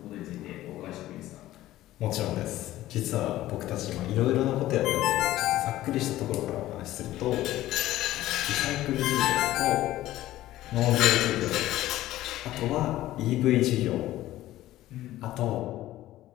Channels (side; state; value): right; quieter; 15.1 dB